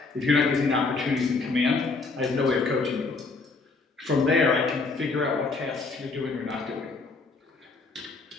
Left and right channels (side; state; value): right; quieter; 4.0 dB